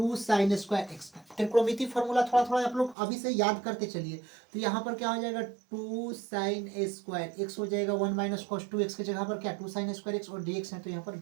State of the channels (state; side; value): drops out; left; at 3.0 s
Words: साइन स्क्वायर एक्स का त्रिकोणमिति फॉर्मूला। थोड़ा थोड़ा आप लोग अभी से याद करते चलिए। तो यहाँ पर क्या हो जाएगा? 2 साइन स्क्वायर एक्स हो जाएगा, 1 माइनस कॉस 2x की जगह पर क्या 2 साइन स्क्वायर एक्स और dx है, तो यहाँ पर